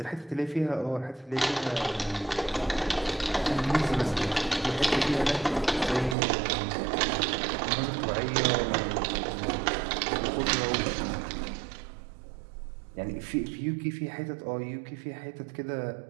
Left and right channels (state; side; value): drops out; left; at 6.2 s